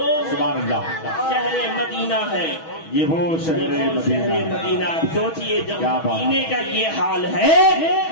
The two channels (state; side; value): late; right; 6.2 ms